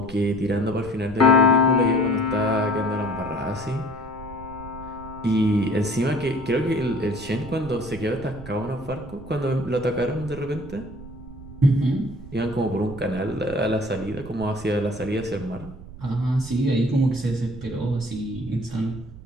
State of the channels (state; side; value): noise; right; rumble, 16 dB below the sound